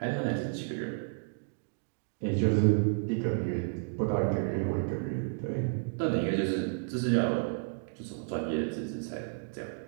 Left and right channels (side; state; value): left; silent; digital silence